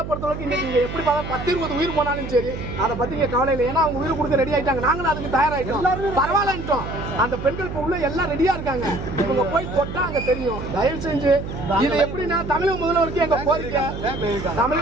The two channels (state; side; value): noise; right; hum, 8 dB below the sound